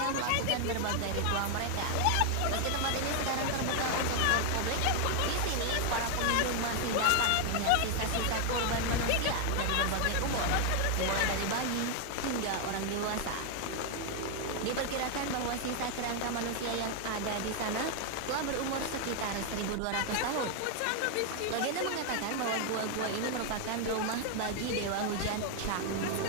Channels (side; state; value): both; different; correlation 0.00